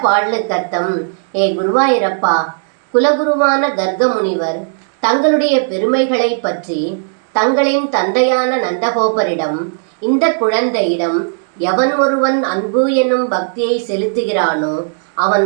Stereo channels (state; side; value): silent; left; digital silence